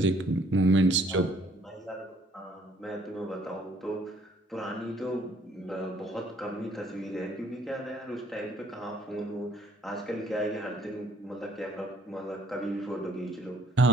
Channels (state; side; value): normal; both; correlation 0.62